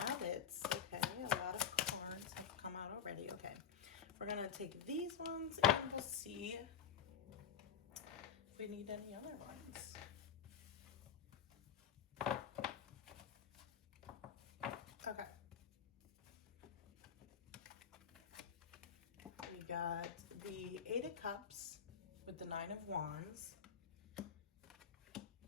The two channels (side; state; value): right; quieter; 7.7 dB